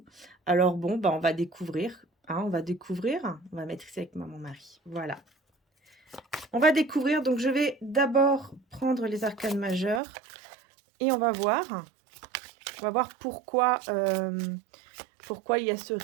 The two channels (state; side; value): drops out; left; at 10.0 s